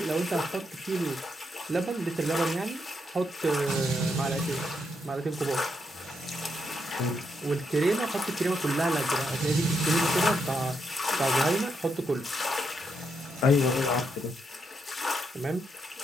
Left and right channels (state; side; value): normal; both; correlation 0.80